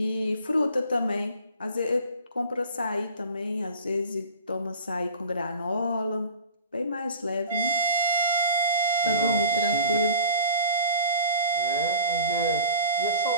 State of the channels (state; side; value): inverted; both; correlation -0.42